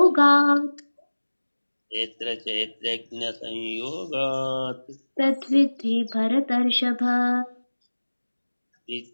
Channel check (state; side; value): inverted; both; correlation -1.00